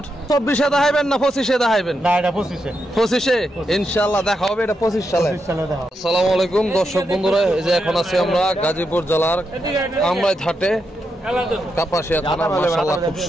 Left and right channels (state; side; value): normal; both; correlation 0.84